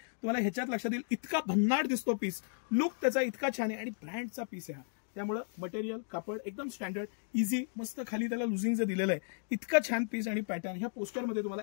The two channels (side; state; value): right; silent; digital silence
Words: ह्याच्यात लक्षात येईल इतका भन्नाट दिसतो पीस, लुक त्याचा इतका छान आहे, आणि ब्रँडचा पीस आहे हा. त्यामुळे मटेरियल कापड एकदम स्टँडर्ड, इझी, मस्त. खाली त्याला लुझिंग जे दिलेलं आहे, इतका छान पीस आणि पॅटर्न. ह्या पोस्टरमध्ये तुम्हाला